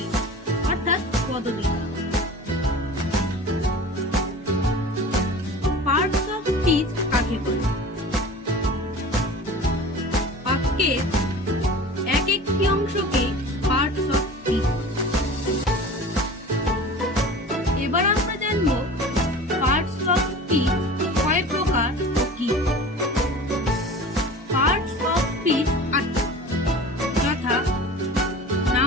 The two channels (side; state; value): both; normal; correlation 0.38